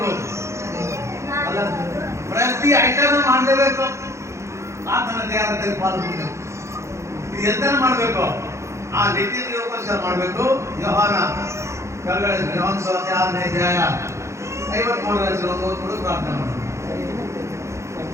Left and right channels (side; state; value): left; late; 0.14 ms